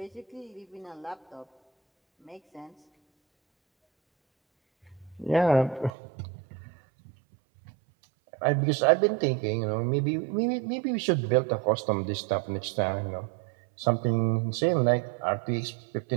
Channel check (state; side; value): drops out; left; at 5.9 s